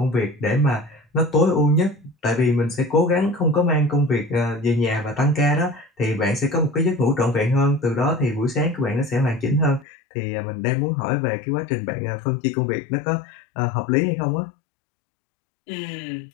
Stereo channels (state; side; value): drops out; right; at 9.9 s